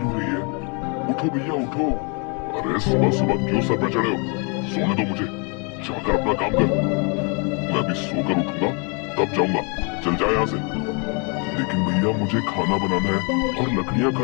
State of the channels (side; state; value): right; quieter; 34.5 dB